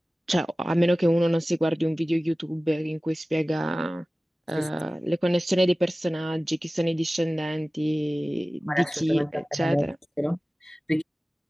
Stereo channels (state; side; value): normal; both; correlation 0.97